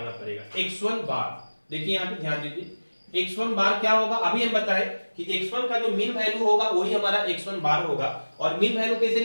पड़ेगा, x1 बार। देखिए यहाँ पे ध्यान दीजिए, x1 बार क्या होगा, अभी हम बताएं कि x1 का जो मीन वैल्यू होगा वही हमारा x1 बार होगा। और मीन वैल्यू कैसे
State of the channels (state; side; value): inverted; both; correlation -1.00